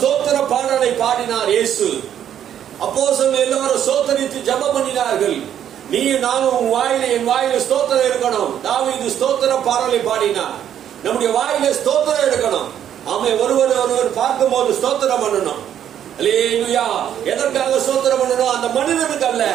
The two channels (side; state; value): left; quieter; 10.0 dB